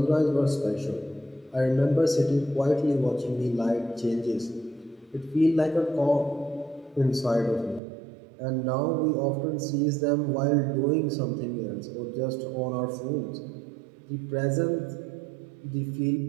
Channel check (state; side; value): drops out; left; at 7.8 s